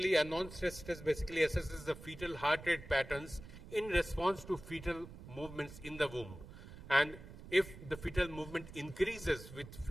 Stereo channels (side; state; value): right; noise; rumble, 15 dB below the sound